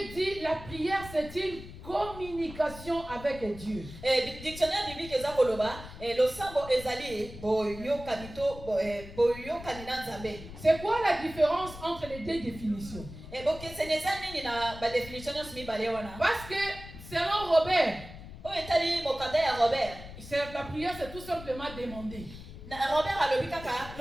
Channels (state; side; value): noise; left; rumble, 14 dB below the sound